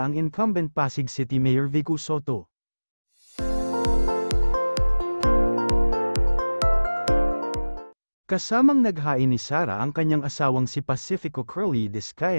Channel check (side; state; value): both; inverted; correlation -1.00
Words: ang incumbent Pasig City Mayor Vico Sotto. Kasamang naghain ni Sara ang kanyang asawang si Pacifico Curly